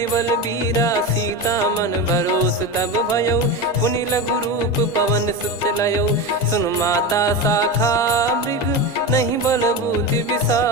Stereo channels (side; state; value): both; normal; correlation 0.21